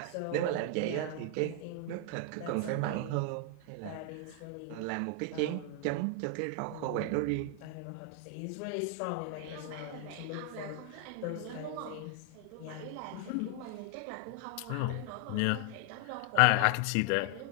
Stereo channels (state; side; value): different; both; correlation 0.00